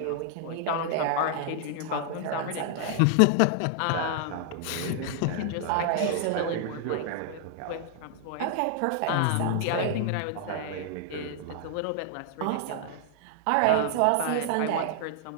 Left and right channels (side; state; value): both; different; correlation -0.01